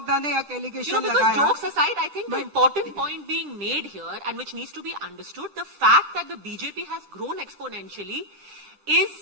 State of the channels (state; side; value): late; left; 10 ms